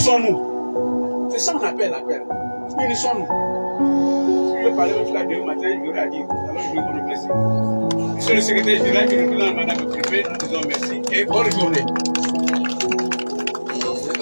C'est ça qu'on appelle l'appel. Unissons-nous. Si je veux parler même là demain matin, je l'aurais dit. Alors je vais vous remercier. Monsieur le secrétaire général qui nous présente Madame le Préfet, nous disons merci et bonne journée.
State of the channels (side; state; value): both; inverted; correlation -1.00